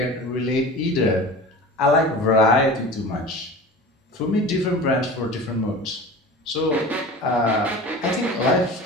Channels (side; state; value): both; normal; correlation 0.36